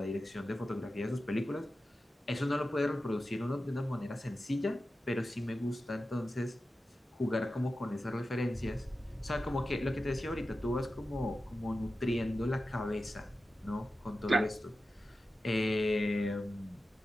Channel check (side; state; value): both; normal; correlation 0.93